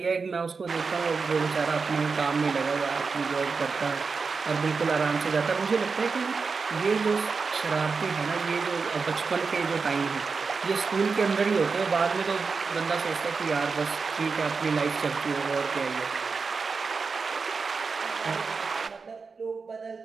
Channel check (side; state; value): left; quieter; 4.8 dB